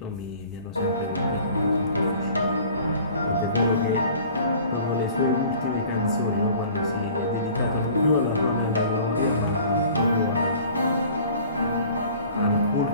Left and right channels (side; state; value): both; inverted; correlation -0.48